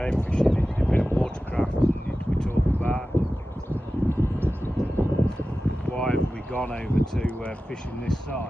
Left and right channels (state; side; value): normal; both; correlation 0.95